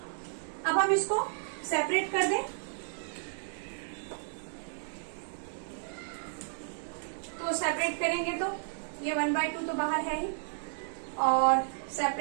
अब हम इसको सेपरेट कर दें, तो सेपरेट करेंगे तो ये 1/2 तो बाहर है ही, और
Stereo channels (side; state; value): left; silent; digital silence